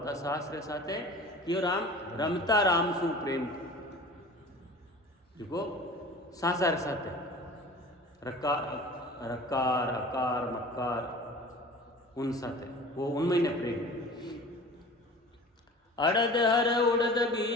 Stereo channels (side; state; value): both; normal; correlation 0.41